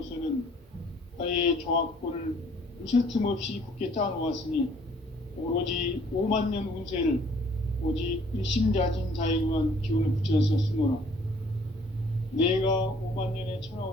나의 조합권을 무쇠 틈 없이 굳게 짜놓았으니 오로지 5만 년 운세를 오직 일심자진 자에게만 기운을 붙여서 쓰노라. 내가 5만 년의 천하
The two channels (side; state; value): both; normal; correlation 0.58